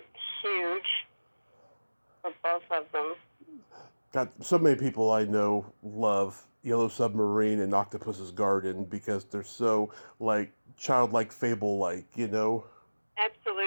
huge for both of them. God, so many people I know love Yellow Submarine and Octopus's Garden because they're so like childlike, fable-like,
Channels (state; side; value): inverted; both; correlation -1.00